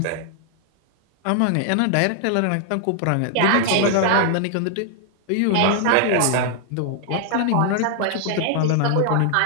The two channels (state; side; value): different; both; correlation 0.00